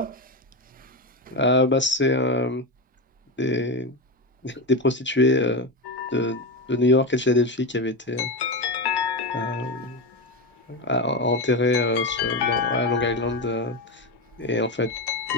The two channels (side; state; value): both; normal; correlation 0.16